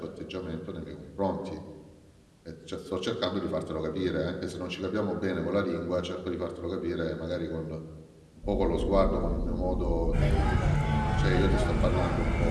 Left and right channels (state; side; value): identical; both; correlation 1.00